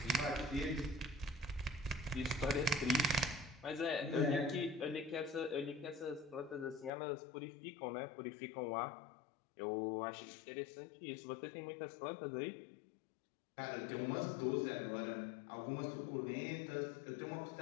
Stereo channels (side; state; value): right; drops out; at 6.9 s